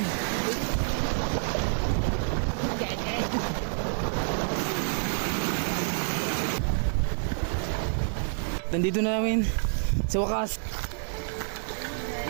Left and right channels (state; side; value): silent; left; 59 dB below the other